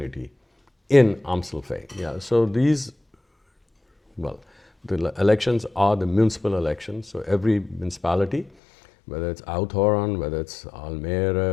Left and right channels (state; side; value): drops out; right; at 8.5 s